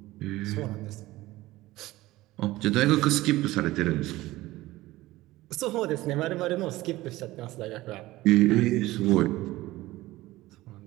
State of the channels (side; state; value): left; quieter; 17.7 dB